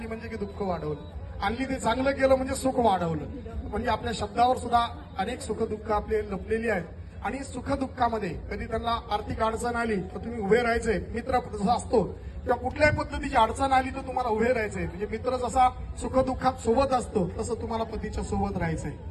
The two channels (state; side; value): identical; both; correlation 1.00